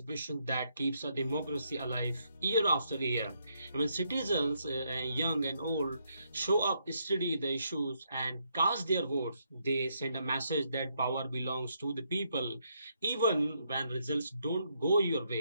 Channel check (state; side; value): inverted; both; correlation -0.76